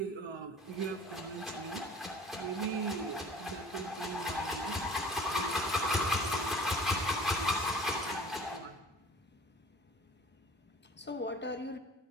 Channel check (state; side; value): normal; both; correlation 0.46